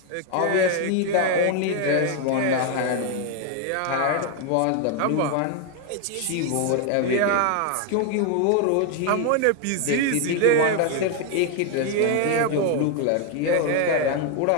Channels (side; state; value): both; different; correlation 0.01